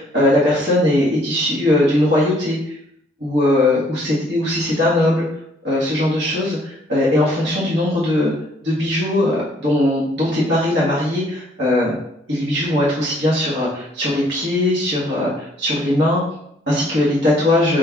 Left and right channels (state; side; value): normal; both; correlation 0.63